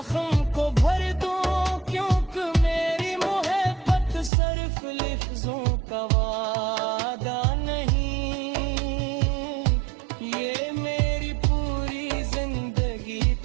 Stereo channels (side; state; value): left; drops out; at 4.3 s